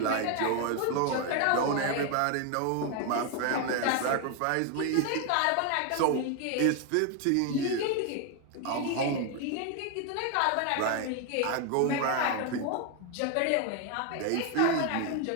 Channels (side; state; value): both; different; correlation 0.01